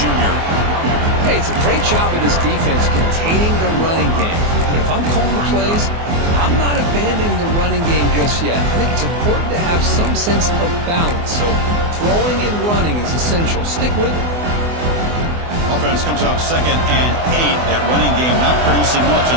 junior. Hey, it's a great job of this defense containing the running game. But if I'm calling the plays, I'm not abandoning the running game just yet. I think it's important to have some sense of balance. So throwing and running is essential. Stick with it. Offense comes up 2nd and 8. That running game not producing much on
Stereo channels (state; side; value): late; left; 24 ms